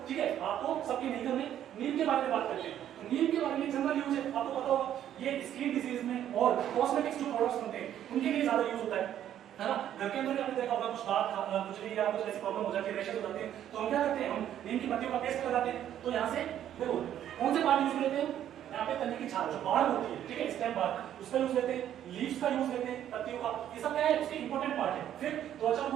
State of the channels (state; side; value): quieter; left; 10.9 dB